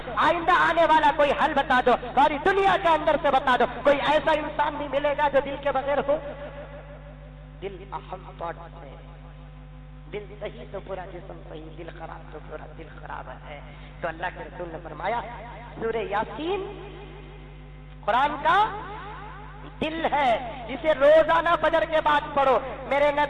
آئندہ آنے والا کوئی حل بتا دو، ساری دنیا کے اندر سے بتا دو، کوئی ایسا انسان نہیں ملے گا جو دل کے بغیر ہو۔ دل اہم پارٹ ہے، دل صحیح تو پورا جسم صحیح، دل خراب تو پورا دل خراب ہے۔ تو اللہ کے رسول نے فرمایا سورہ یاسین قرآن کا دل ہے، جسے روزانہ فجر کے بعد پڑھو۔ میرے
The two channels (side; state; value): both; identical; correlation 1.00